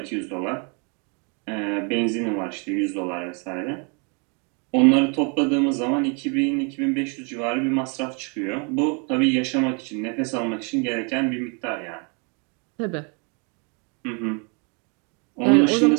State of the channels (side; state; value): left; quieter; 35.1 dB